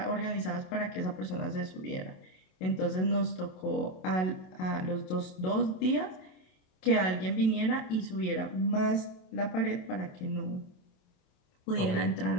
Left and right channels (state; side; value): late; right; 27 ms